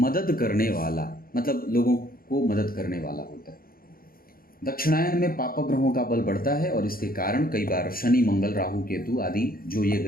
करने वाला, मतलब लोगों को मदद करने वाला होता है। दक्षिणायन में पाप ग्रहों का बल बढ़ता है और इसके कारण कई बार शनि, मंगल, राहु, केतु आदि जो ये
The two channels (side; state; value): right; late; 0.42 ms